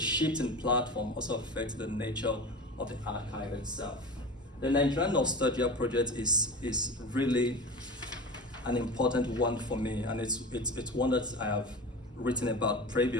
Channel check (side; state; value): both; normal; correlation 0.31